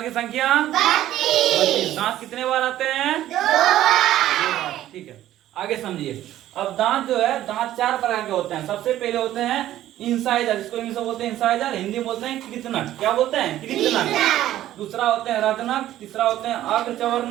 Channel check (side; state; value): left; quieter; 13.3 dB